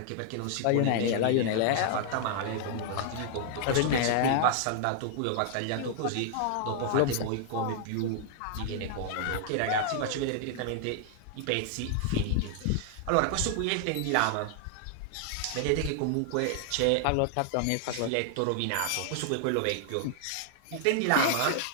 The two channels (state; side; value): different; both; correlation 0.00